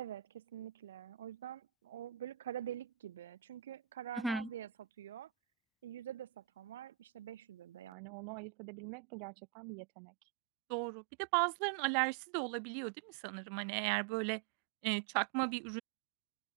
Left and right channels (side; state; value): left; drops out; at 7.9 s